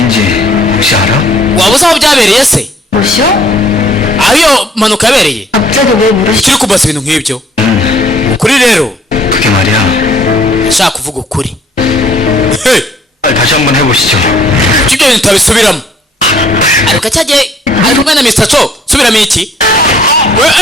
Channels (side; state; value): both; normal; correlation 0.60